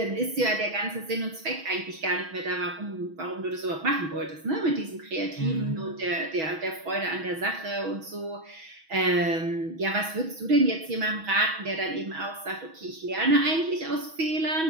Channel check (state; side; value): late; left; 6.2 ms